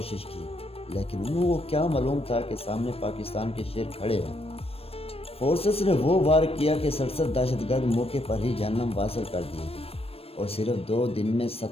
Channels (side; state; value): right; late; 0.28 ms